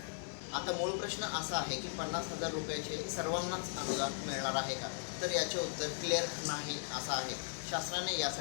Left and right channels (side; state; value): right; silent; digital silence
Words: आता मूळ प्रश्न असा आहे की 50,000 रुपयाचे सर्वांनाच अनुदान मिळणार आहे का? तर याचे उत्तर क्लिअर नाही असं आहे। शासनाने